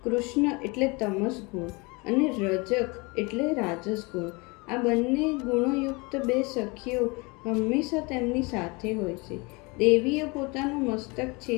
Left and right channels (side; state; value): right; quieter; 27.4 dB